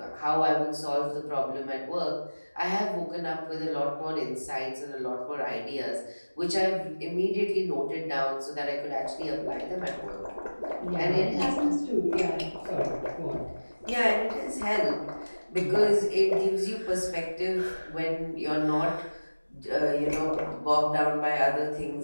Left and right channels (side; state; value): both; inverted; correlation -1.00